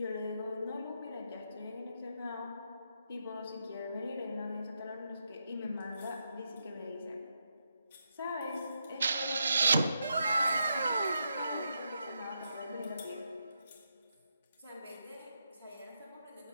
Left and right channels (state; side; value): inverted; both; correlation -0.82